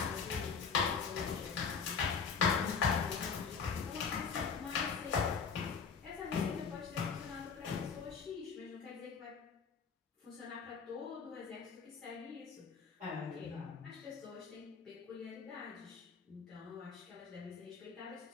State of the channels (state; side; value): quieter; right; 5.9 dB